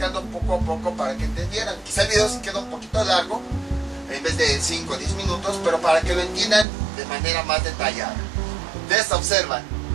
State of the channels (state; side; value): drops out; left; at 6.7 s